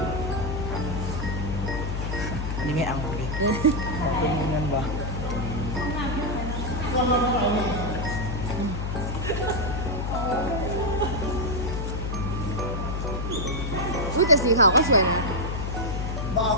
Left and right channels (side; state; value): left; noise; hum, 2 dB below the sound